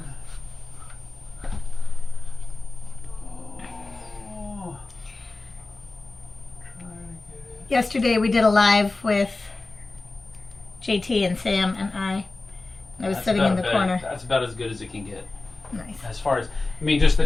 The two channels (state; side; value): quieter; right; 3.3 dB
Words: Oh. Try to get it. Yesterday we did a live with JT and Sam and I. I was That's sitting in about the better. corner. That's about as good as it can get. Nice. As far as, I mean, just the